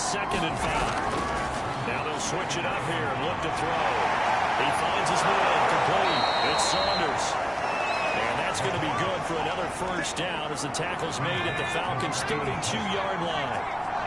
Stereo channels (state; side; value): identical; both; correlation 1.00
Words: and 5. Now they'll switch it up here and look to throw. He finds his man complete. It's Saunders. And that's going to be good for another first down as the tackle's made at the Falcons' 32-yard line.